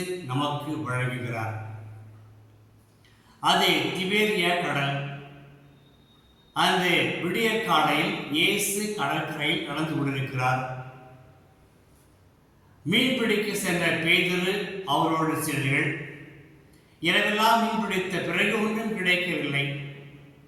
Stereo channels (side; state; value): both; identical; correlation 1.00